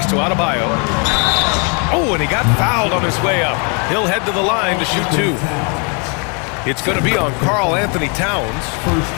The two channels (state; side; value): quieter; right; 36.2 dB